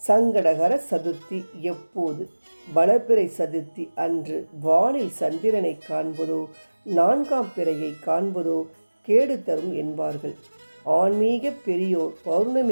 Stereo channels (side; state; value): both; inverted; correlation -1.00